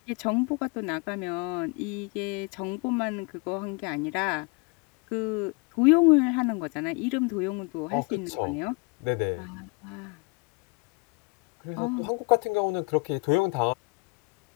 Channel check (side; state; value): right; quieter; 29.8 dB